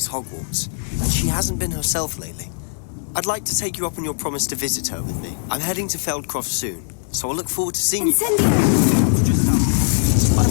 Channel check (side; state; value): right; silent; digital silence